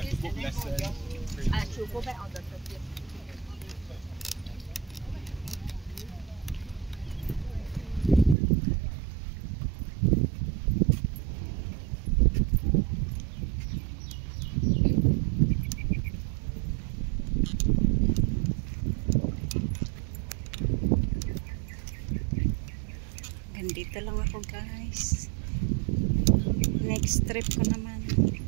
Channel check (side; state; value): left; drops out; at 8.3 s